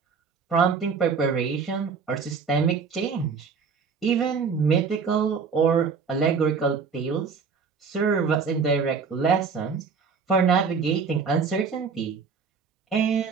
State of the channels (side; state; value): left; quieter; 5.6 dB